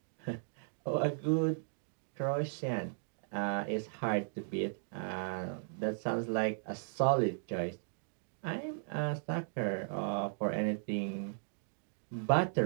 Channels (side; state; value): left; silent; digital silence